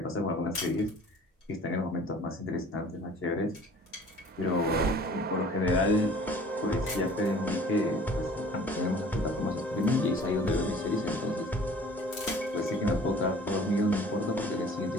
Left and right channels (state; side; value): normal; both; correlation 0.49